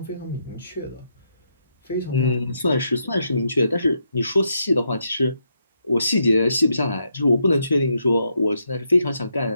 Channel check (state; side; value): inverted; both; correlation -0.79